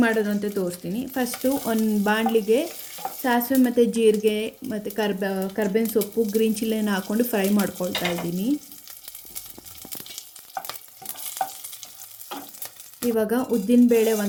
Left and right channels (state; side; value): identical; both; correlation 1.00